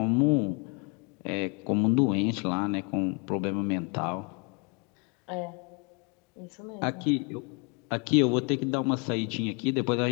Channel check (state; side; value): quieter; right; 33.0 dB